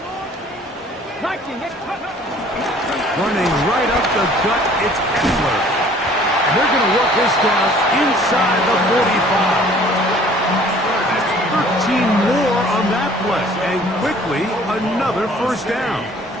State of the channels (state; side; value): normal; both; correlation 0.54